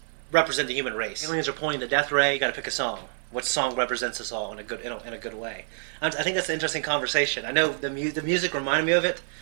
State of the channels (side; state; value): left; silent; digital silence